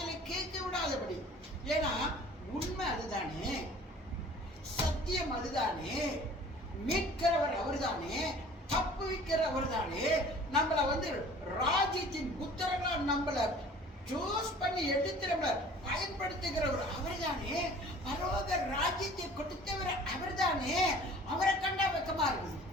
கேட்க விடாதபடி. ஏன்னா உண்மை அதுதானே, சத்தியம் அதுதானே, மீட்கிறவர் அவர்தானே, தப்பு வைக்கிற அவர்தானே, நம்மளை ராஜ்யத்தின் புத்திரங்களா நம்மளை சூஸ் பண்ணி எடுத்து நம்மளை பயன்படுத்துகிறவர் அவர்தானே, பரலோக ராஜ்யத்தை கொடுத்தவர் அவர்தானே. அவரை கண்டா வெக்கமா இருக்குது.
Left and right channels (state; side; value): normal; both; correlation 0.48